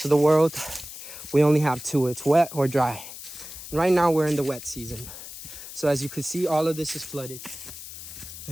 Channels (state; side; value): noise; left; hiss, 12 dB below the sound